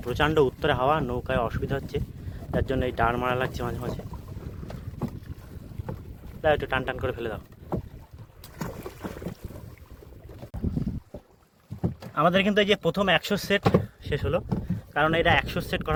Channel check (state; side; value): identical; both; correlation 1.00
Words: প্রচণ্ড উত্তরে হাওয়া, নৌকায় অসুবিধা হচ্ছে, যার জন্য এই ডাড় মারা লাগছে মাঝে মাঝে। দাও, একটু টান টান করে ফেলে দাও। আমাদের কিন্তু এই যে প্রথম 100 সেট শেষ হলো, কারণ এটা 100 সেট